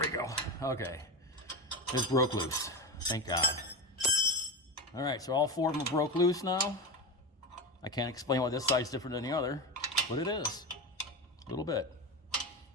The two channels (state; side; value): normal; both; correlation 0.20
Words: go. Okay. It's broke loose. Thank God. Alright, so all four of them broke loose now. I can't explain why this side's different than the other, but it is. A little bit.